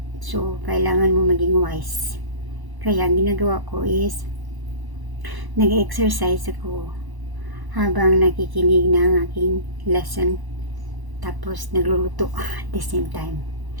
So, kailangan mo maging wise. Kaya, ang ginagawa ko is, nag-exercise ako habang nakikinig ng aking lesson. Tapos, nagluluto at the same time.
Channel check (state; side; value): late; left; 1.0 ms